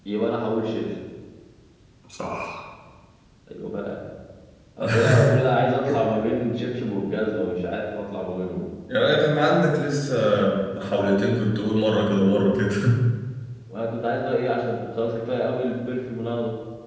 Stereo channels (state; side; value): identical; both; correlation 1.00